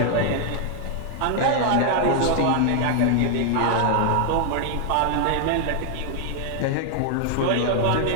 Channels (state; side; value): different; both; correlation 0.00